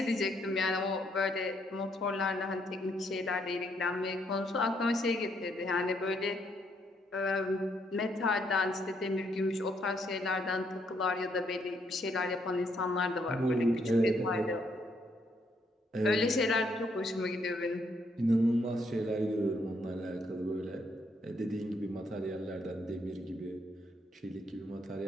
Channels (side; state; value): both; normal; correlation 0.73